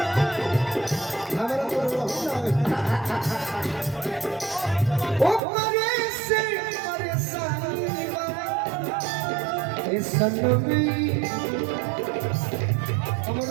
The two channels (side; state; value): left; drops out; at 5.4 s